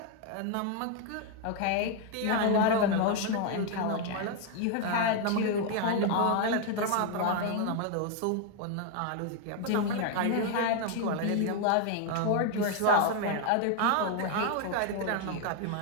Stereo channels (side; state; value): both; different; correlation 0.01